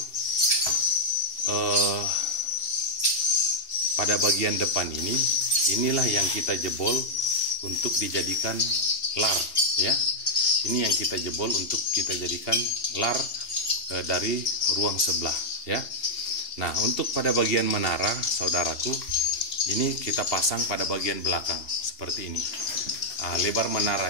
pada bagian depan ini, inilah yang kita jebol untuk dijadikan lar ya. Ini yang kita jebol untuk kita jadikan lar dari ruang sebelah ya. Nah, untuk pada bagian menara, saudaraku, ini kita pasang pada bagian belakang seperti ini. Lebar menara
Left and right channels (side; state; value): right; late; 2.7 ms